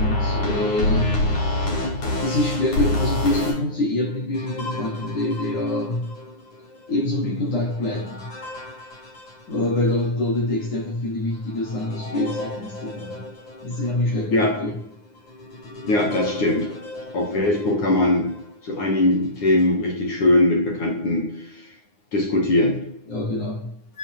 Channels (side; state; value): right; late; 9.7 ms